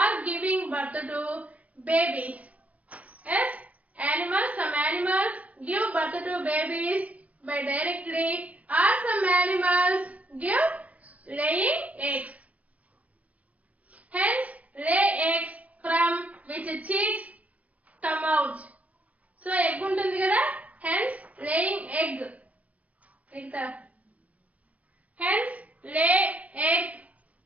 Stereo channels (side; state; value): left; late; 0.067 ms